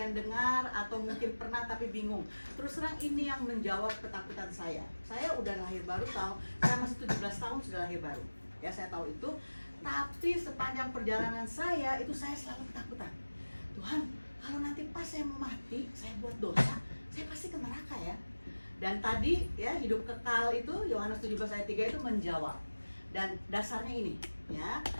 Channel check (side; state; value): both; inverted; correlation -1.00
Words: dengar atau mungkin pernah tapi bingung. Terus terang ini yang menjawab ketakutan saya. Saya udah lahir baru saya masih 17 tahun sudah lahir baru. Ya, saya tahu itu. Tapi sepanjang perjalanan saya itu saya selalu ketakutan. Tuhan, kalau nanti pas saya mau mati, saya buat dosa, saya pasti ke neraka ya. Dan tadi ya hidup kekal itu Yohanes 17 ayat 3 itu menjawab. Dan dasarnya ini ya.